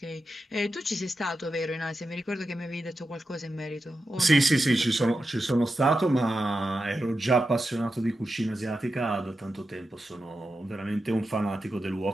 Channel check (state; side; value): normal; both; correlation 0.90